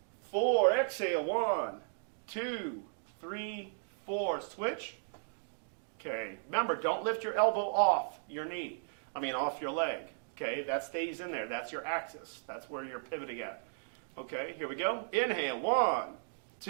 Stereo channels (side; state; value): left; silent; digital silence